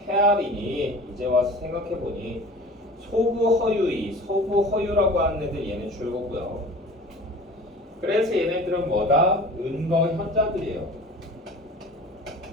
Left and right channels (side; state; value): both; normal; correlation 0.40